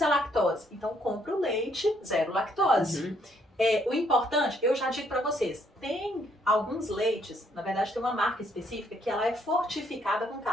à lactose. Então compra o leite zero lactose. O importante, eu já digo para vocês, tem alguns leites, na verdade tem uma marca específica que ela é fortificada com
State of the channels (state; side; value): normal; both; correlation 0.69